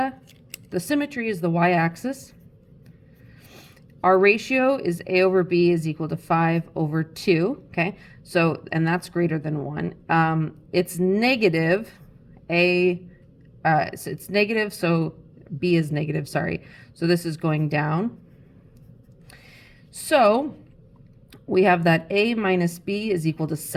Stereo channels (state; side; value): identical; both; correlation 1.00